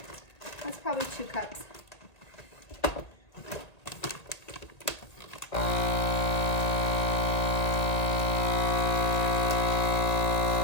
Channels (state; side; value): late; right; 1.8 ms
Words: that's probably 2 cups.